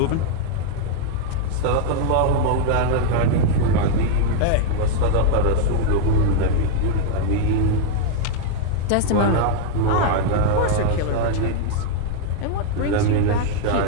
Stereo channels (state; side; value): different; both; correlation 0.00